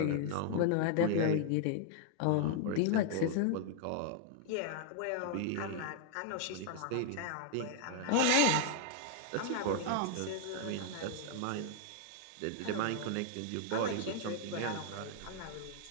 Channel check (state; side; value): different; both; correlation 0.00